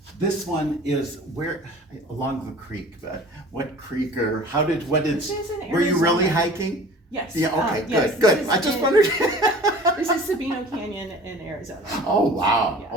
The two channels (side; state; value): both; normal; correlation 0.44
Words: this one is where, along the creek, but what creek, or what did, This is in were you really Arizona. hiking? Yes. Yeah, okay, yes, good. this I is just in- wondered. This is Sabino Canyon in Arizona. Oh, wow. Yeah.